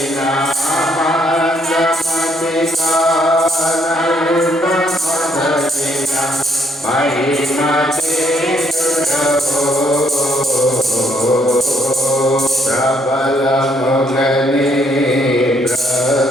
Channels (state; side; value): normal; both; correlation 0.70